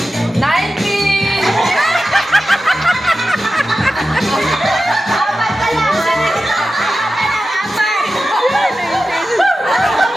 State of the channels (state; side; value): normal; both; correlation 0.93